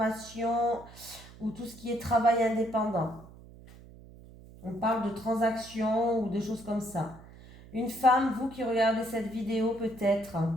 ou tout ce qui est travail indépendant. On parle de transaction ou de choses comme ça. Une femme, vous qui regardez cette vidéo peut-être.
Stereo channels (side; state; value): right; noise; hum, 20 dB below the sound